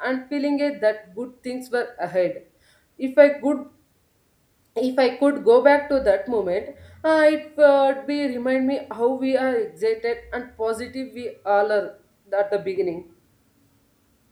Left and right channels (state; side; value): identical; both; correlation 1.00